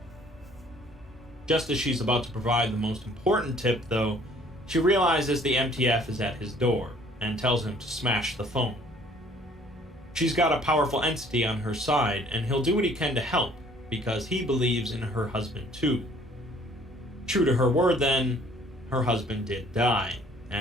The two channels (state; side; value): normal; both; correlation 0.57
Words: Just as she's about to provide the most important tip, though, she realizes the MTF is at his door, and tells him to smash the phone. She's got a powerful entity on her side, and he'll do what he can to help, because he believes in her husband too. True to her word then, her husband did die,